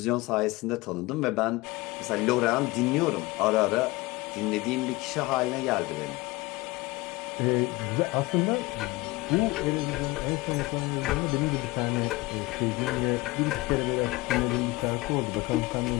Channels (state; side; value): quieter; right; 21.7 dB